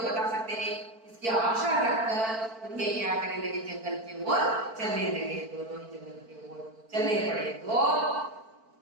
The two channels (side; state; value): left; late; 4.5 ms